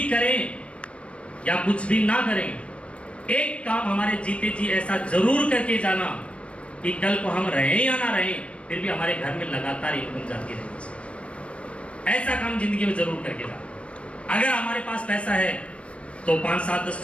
करें या कुछ भी ना करें, एक काम हमारे जीते जी ऐसा जरूर करके जाना कि कल को हम रहें या ना रहें, फिर भी हमारे घर में लगातार इनकम जाती रहेगी। ऐसा काम जिंदगी में जरूर करके जाना। अगर हमारे पास पैसा है तो 5, 7, 10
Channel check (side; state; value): right; late; 0.061 ms